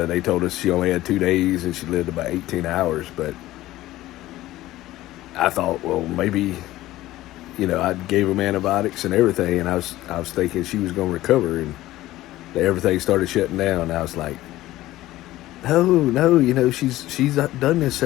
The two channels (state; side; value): quieter; right; 16.0 dB